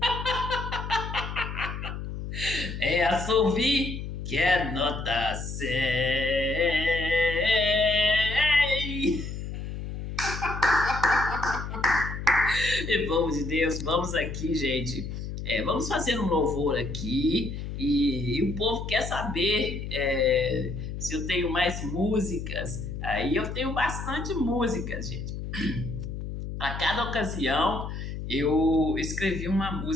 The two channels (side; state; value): left; noise; hum, 6 dB below the sound